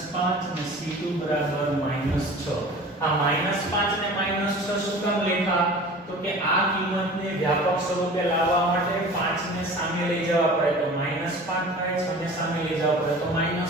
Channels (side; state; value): both; normal; correlation 0.41